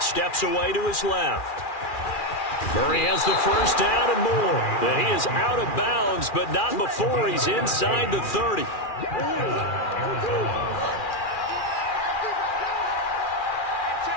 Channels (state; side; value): late; right; 2.4 ms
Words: away to his left. Murray has the first down and more. And he is out of bounds, but not before he's inside the 30.